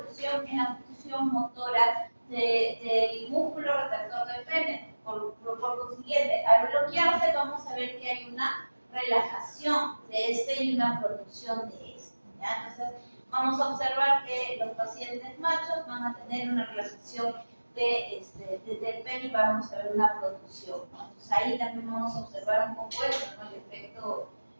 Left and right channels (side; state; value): both; inverted; correlation -1.00